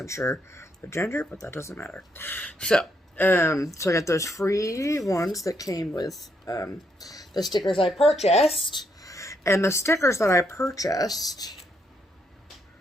sure the gender, but that doesn't matter. So I got those free ones that came with the stickers I purchased. And the stickers that I purchased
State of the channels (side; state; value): both; normal; correlation 0.76